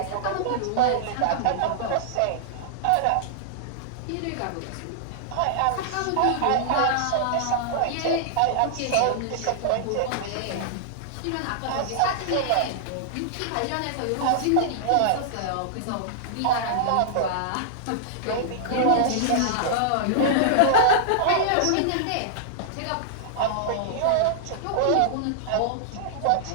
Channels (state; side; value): different; both; correlation -0.01